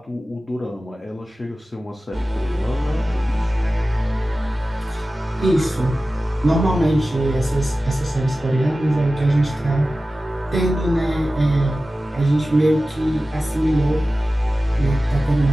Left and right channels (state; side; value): normal; both; correlation 0.95